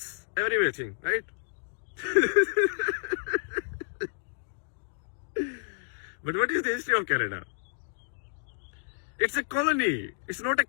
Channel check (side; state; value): right; silent; digital silence